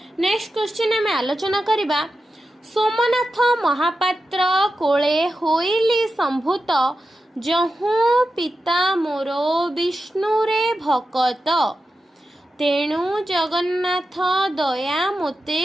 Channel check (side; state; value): both; normal; correlation 0.90